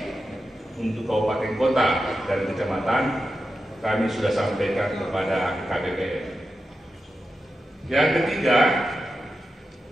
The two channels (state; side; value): normal; both; correlation 0.90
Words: untuk kabupaten kota dan kecamatan kami sudah sampaikan kepada KPPN. Yang ketiga,